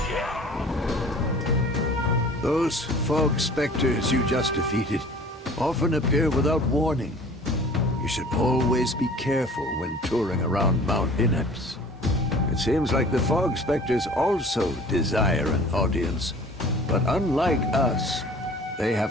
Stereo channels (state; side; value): normal; both; correlation 0.46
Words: Those fog specters you just defeated often appear without warning. You should always be careful when touring around Mount Ineps. It seems like the fog specters also desire an audience, but unlike us, they have